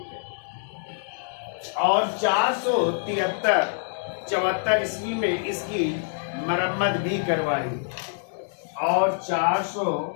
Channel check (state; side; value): silent; right; digital silence